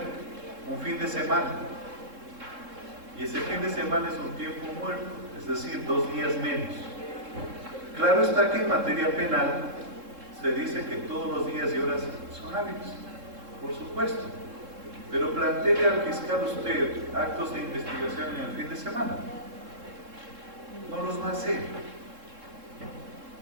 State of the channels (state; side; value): late; left; 3.7 ms